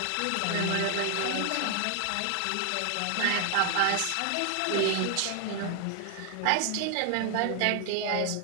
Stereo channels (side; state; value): both; different; correlation 0.00